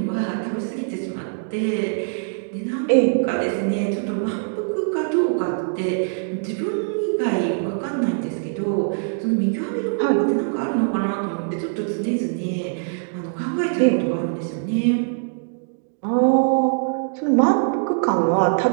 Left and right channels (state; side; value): silent; left; digital silence